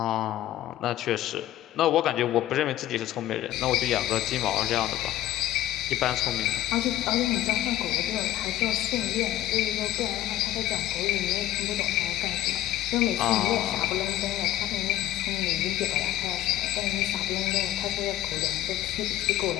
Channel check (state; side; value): quieter; right; 13.7 dB